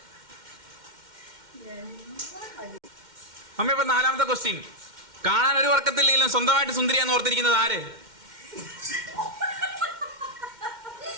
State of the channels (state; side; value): late; left; 2.1 ms